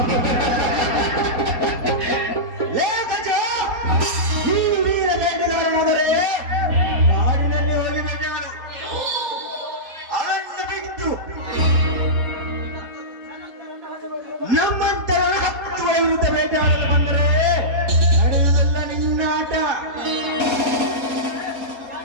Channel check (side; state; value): left; late; 4.2 ms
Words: ಲೇ ಗಜ, ನೀನು ವೀರ ಬೇಟೆಗಾರನಾದರೆ ಕಾಡಿನಲ್ಲಿ ಹೋಗಿ ಬೇಟೆ ಮಾಡು. ಅರಣ್ಯ ಬಿಟ್ಟು ನಮ್ಮಂತರ 10 ವಿರುದ್ಧ ಬೇಟೆ ಮಾಡಲು ಬಂದರೆ ನಡೆಯುವುದಲ್ಲ ನಿನ್ನ ಆಟ.